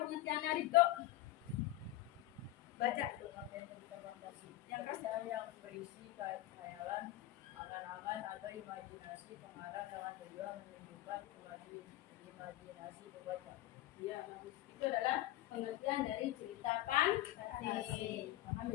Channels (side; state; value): right; quieter; 15.5 dB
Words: pengertiannya Riko. Baca. Pengertian cerita fantasi. Yang keras. Cerita yang berisi khayalan, angan-angan atau imajinasi pengarang dengan tujuan menunjukkan imajinasi pembaca. Iya, bagus. Itu adalah pengertian dari cerita fantasi. Paham